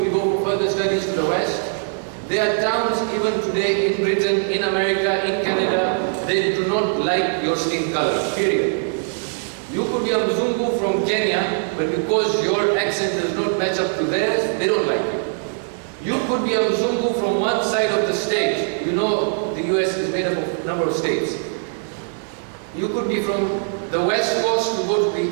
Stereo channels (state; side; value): silent; left; digital silence